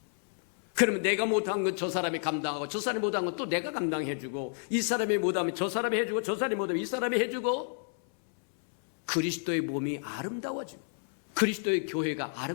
그러면 내가 못한 건 저 사람이 감당하고 저 사람이 못한 건 또 내가 감당해주고 이 사람이 못하면 저 사람이 해주고 저 사람이 못하면 이 사람이 해주고 그리스도의 몸이 아름다워지고 그리스도의 교회가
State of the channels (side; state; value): right; silent; 58 dB below the other